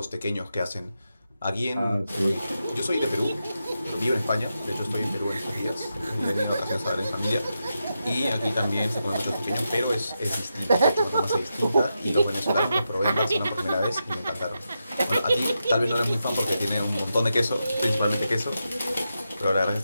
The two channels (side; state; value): both; inverted; correlation -0.87